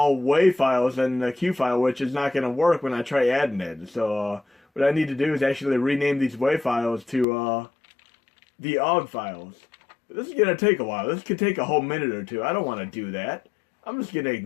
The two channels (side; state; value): right; drops out; at 7.2 s